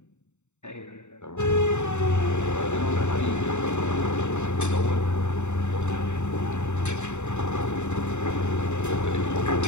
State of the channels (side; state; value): right; late; 0.83 ms